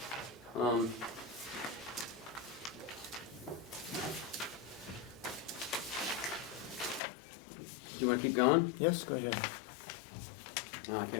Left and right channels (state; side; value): drops out; right; at 7.0 s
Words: Do you want to keep going? Yes, go ahead. No, I